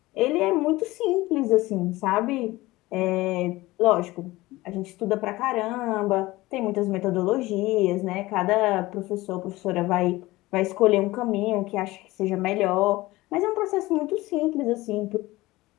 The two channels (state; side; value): quieter; right; 19.2 dB